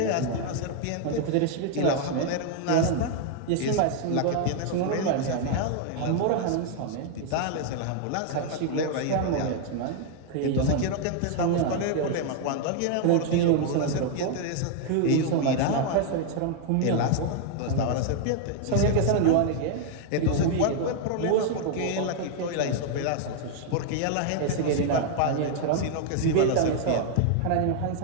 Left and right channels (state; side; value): different; both; correlation 0.00